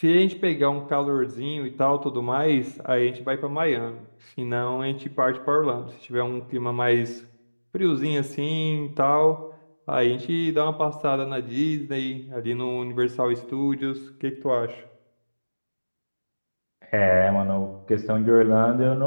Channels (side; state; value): both; inverted; correlation -1.00